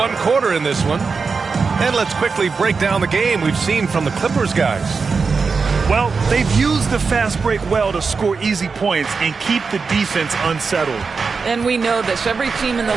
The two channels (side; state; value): left; quieter; 4.9 dB